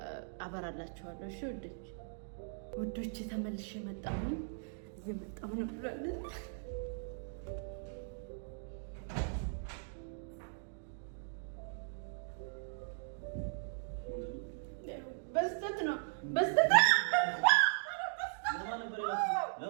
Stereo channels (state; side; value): silent; left; digital silence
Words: አበራላችኋለሁ። እሺ ውዶች ተመልሼ መጣሁኝ። እየመጣሁ ነው ብሏል። በስተት ነው